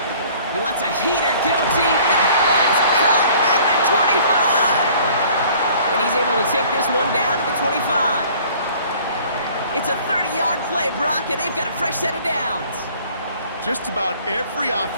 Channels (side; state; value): both; inverted; correlation -0.52